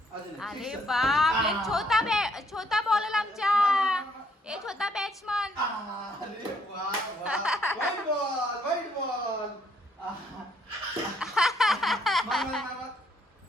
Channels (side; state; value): both; normal; correlation 0.68